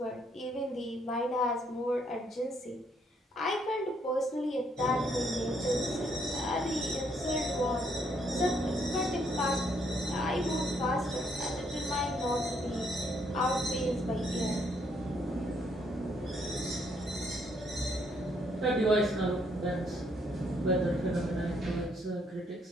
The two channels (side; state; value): both; normal; correlation 0.71